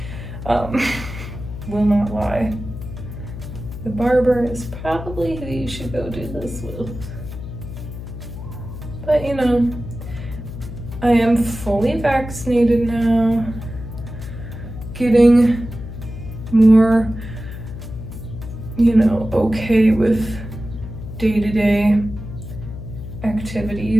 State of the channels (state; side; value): noise; left; hum, 10 dB below the sound